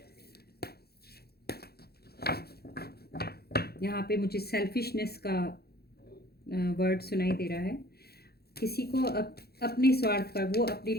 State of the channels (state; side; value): late; right; 0.46 ms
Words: यहाँ पे मुझे सेल्फिशनेस का वर्ड सुनाई दे रहा है। किसी को अपने स्वार्थ पर, वो अपने